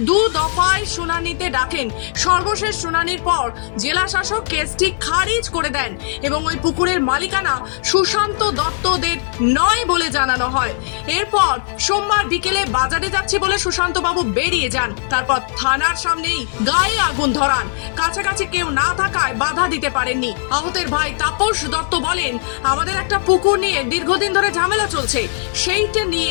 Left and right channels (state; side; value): silent; right; digital silence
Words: 2 দফায় শুনানিতে ডাকেন। সর্বশেষ শুনানির পর জেলা শাসক কেসটি খারিজ করে দেন এবং ওই পুকুরের মালিকানা সুশান্ত দত্তদের নয় বলে জানানো হয়। এরপর সোমবার বিকেলে বাজারে যাচ্ছি বলে সুশান্ত বাবু বেরিয়ে যান। তারপর থানার সামনেই গায়ে আগুন ধরান। কাছাকাছি কেউ না থাকায় বাধা দিতে পারেননি। আহতের ভাই তাপস দত্ত বলেন, আমাদের একটা পুকুর নিয়ে দীর্ঘদিন ধরে ঝামেলা চলছে, সেইটা নিয়ে